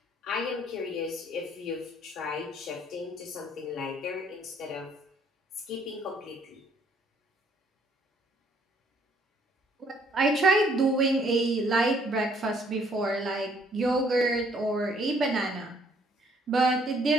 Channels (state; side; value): normal; both; correlation 0.64